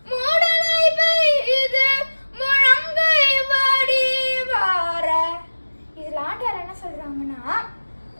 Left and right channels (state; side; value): inverted; both; correlation -1.00